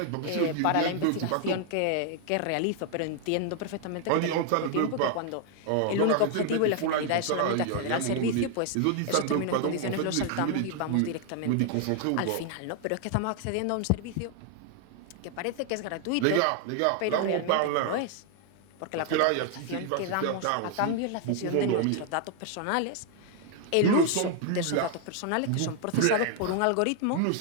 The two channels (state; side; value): different; both; correlation 0.00